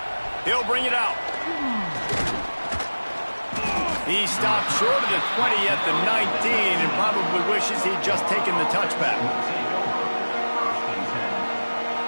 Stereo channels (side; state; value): both; inverted; correlation -1.00